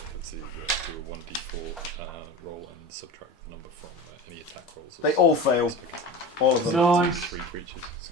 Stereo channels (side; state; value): both; normal; correlation 0.31